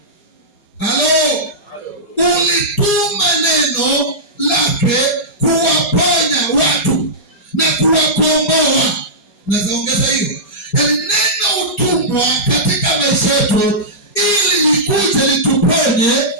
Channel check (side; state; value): right; late; 4.3 ms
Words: Halo? Ulituma neno lake kuwaponya watu na kuwakomboa. Naweza ongeza hiyo. Yaani neno utumwa katika maisha yetu ili likuje lituponye,